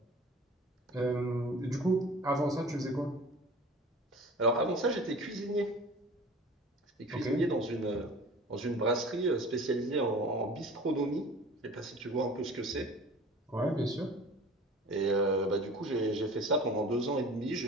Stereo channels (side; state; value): both; normal; correlation 0.42